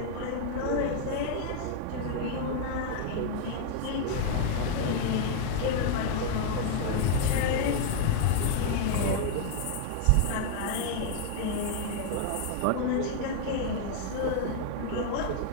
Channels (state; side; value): different; both; correlation 0.00